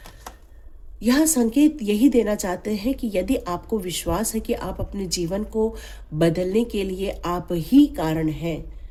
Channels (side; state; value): both; identical; correlation 1.00